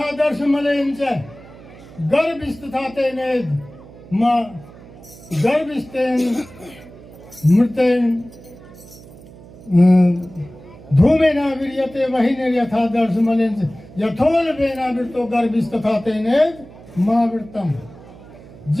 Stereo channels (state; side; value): noise; right; hum, 20 dB below the sound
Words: दर्श मलेन च गर्भिष्ठता तेने मां गर्भिष्ठेन मृतेन धूमे न विर्यते वही नर्यथा दर्श मलेन च यथोल वेना वृतो गर्भिष्ठता तेने मां वृतम।